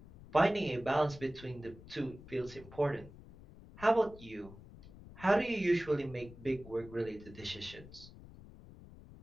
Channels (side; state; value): left; noise; rumble, 18 dB below the sound